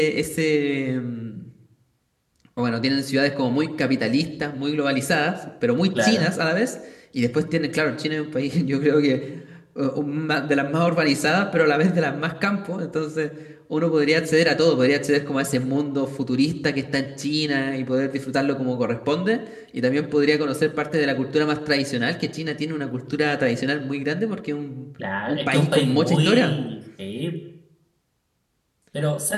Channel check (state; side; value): identical; both; correlation 1.00